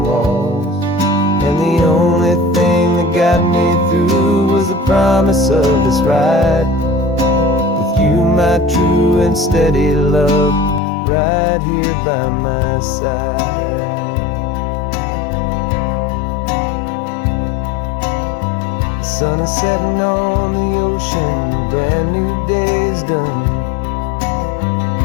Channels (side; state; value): right; drops out; at 10.8 s